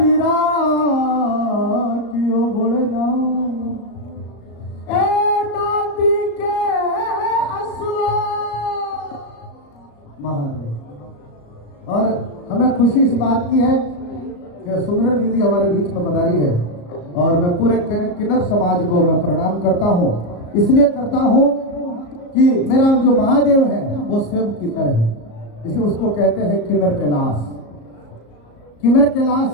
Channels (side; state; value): right; late; 35 ms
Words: रातियों बोलना, ए नाती के असुआ महादेव। और हमें खुशी इस बात की है कि सुमिरन दीदी हमारे बीच में पधारी है और मैं पूरे किन्नर समाज को मैं प्रणाम करता हूँ। इसलिए करता हूँ कि मेरा जो महादेव है वो स्वयं किन्नर है, इसलिए उसको कहते हैं किन्नर कैलाश। किन्नर कैलाश